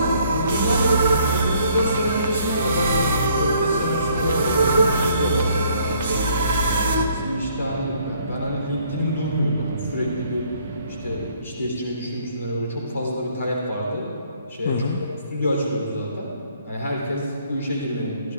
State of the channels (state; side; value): inverted; both; correlation -0.63